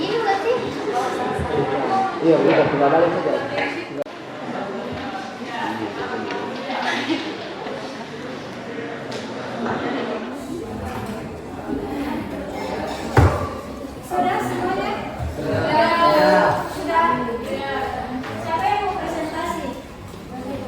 berarti Iya, udah tinggal balik saja. sudah semuanya? Sudah. Siapa yang mau presentasi?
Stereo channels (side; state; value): both; identical; correlation 1.00